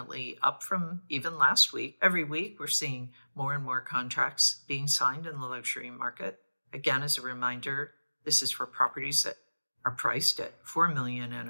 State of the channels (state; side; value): inverted; both; correlation -1.00